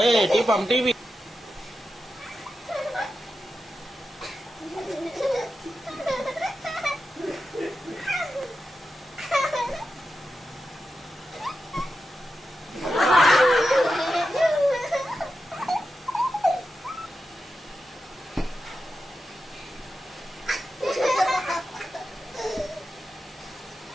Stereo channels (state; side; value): normal; both; correlation 0.90